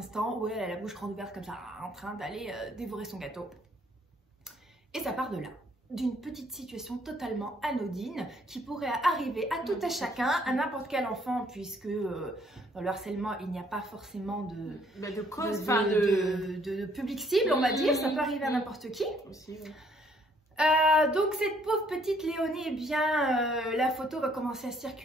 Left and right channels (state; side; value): normal; both; correlation 0.65